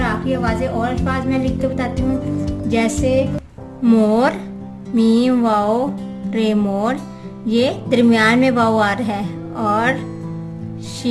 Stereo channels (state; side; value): identical; both; correlation 1.00